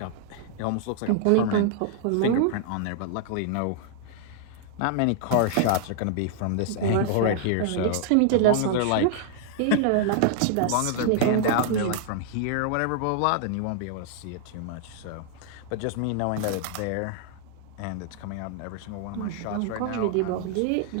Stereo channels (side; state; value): both; different; correlation -0.01